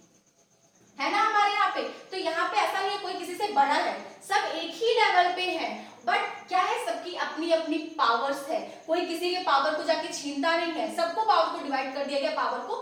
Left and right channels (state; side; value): identical; both; correlation 1.00